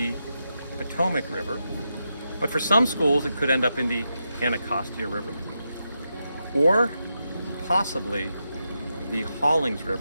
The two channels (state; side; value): inverted; both; correlation -0.86